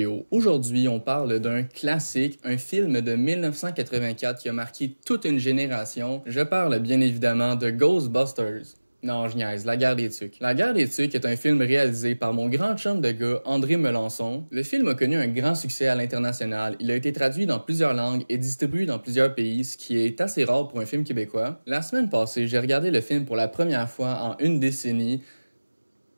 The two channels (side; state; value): both; inverted; correlation -1.00